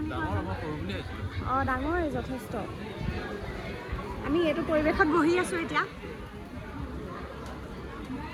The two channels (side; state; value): both; identical; correlation 1.00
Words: কয়। ডাঙৰেই যথেষ্ট। আমি এইটো পৰিৱেশত বহি আছোঁ এতিয়া।